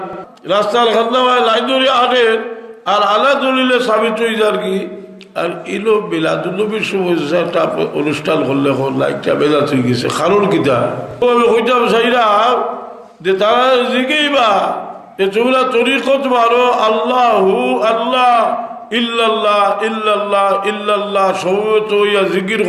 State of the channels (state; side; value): identical; both; correlation 1.00